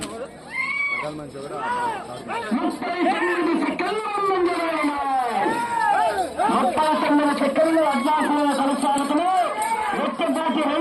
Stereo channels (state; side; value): identical; both; correlation 1.00